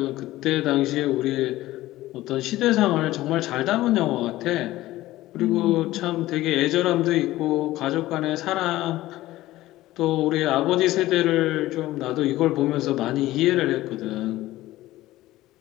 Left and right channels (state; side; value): quieter; right; 16.4 dB